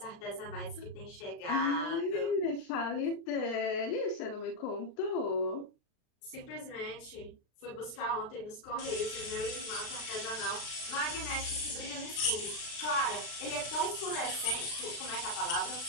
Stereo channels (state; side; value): late; right; 36 ms